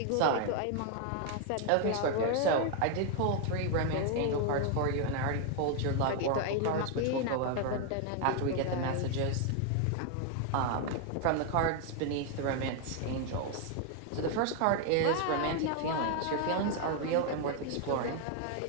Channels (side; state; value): both; different; correlation 0.01